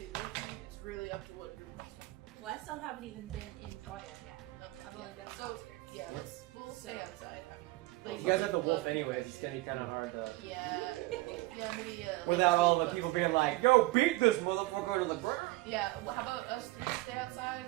with you. It's really up to what group wants to. Well, I still haven't even been in Troya yet. I've only been on So, outskirts. yeah, we'll stay outside. I mean, If you guys have the wolf anyways, it's gonna be kind of hard to. yeah, maybe. Without all the people being like, yo, beat this motherfucker to the ground. Yeah, well, how about us three stay outside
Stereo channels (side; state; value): left; quieter; 20.2 dB